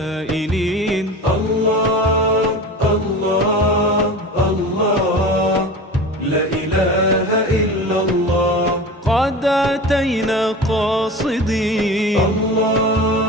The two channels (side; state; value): both; normal; correlation 0.32